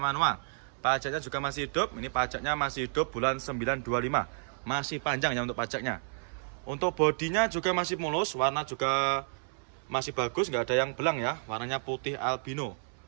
manual. Pajaknya juga masih hidup. Ini pajaknya masih hidup bulan 925. Masih panjang ya untuk pajaknya. Untuk bodinya juga masih mulus, warna juga masih bagus, nggak ada yang belang ya. Warnanya putih albino.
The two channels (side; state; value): left; silent; 57 dB below the other